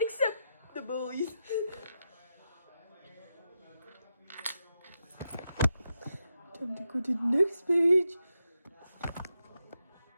the bullies. Time to go to the next page.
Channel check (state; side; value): inverted; both; correlation -0.86